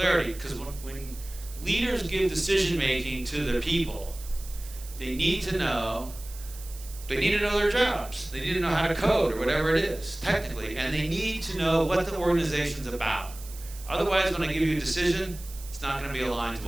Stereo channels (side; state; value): right; noise; hiss, 16 dB below the sound